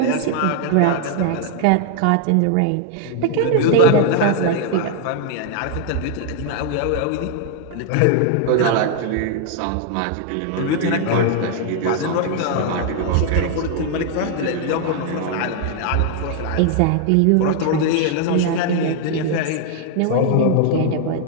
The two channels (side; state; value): both; different; correlation 0.00